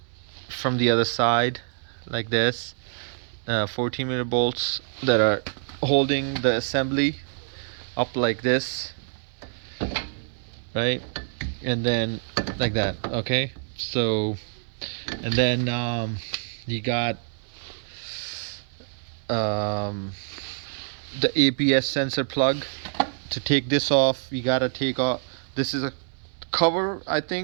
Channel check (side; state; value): left; silent; 61 dB below the other